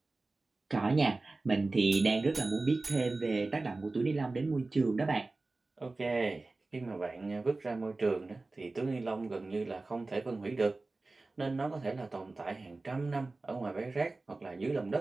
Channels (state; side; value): quieter; left; 3.3 dB